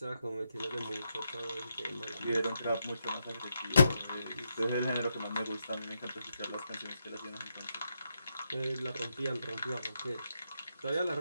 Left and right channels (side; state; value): both; inverted; correlation -0.82